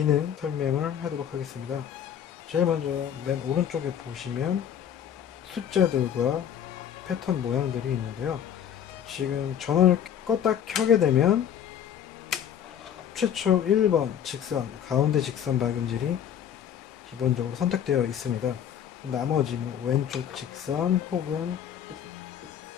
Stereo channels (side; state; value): right; quieter; 9.2 dB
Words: 설명을 하도록 하겠습니다. 제일 먼저 맨 오른쪽에 보시면 숫자들과 패턴 모양들이 있는데요. 지금 전원을 껐다 켜게 되면 최초 1번 직선, 가운데 직선 박음질이 기본적으로 선택되어 있습니다. 나머지 왼쪽 직선 혹은